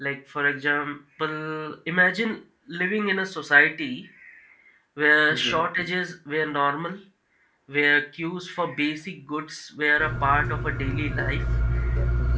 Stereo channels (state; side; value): identical; both; correlation 1.00